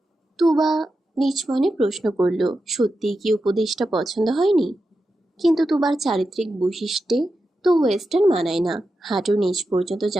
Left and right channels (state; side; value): normal; both; correlation 0.90